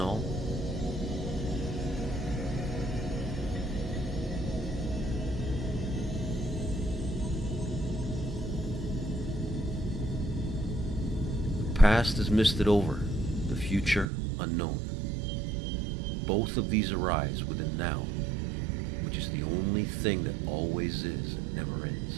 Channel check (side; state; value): left; drops out; at 14.1 s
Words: The past is misted over, the future unknown. Both of these arise within now, which is the only thing that always is and never